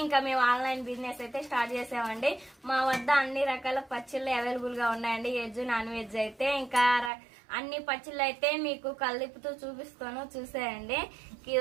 ఇంకా మేము ఆన్లైన్ బిజినెస్ అయితే స్టార్ట్ చేసామండి. మా వద్ద అన్ని రకాల పచ్చళ్ళు అవైలబుల్ గా ఉన్నాయండి, వెజ్ నాన్ వెజ్ అయితే. ఇంకా అన్ని పచ్చళ్ళు అయితే మీకు కలిపుతూ చూపిస్తాను, చూసేయండి.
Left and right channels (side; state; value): left; drops out; at 7.1 s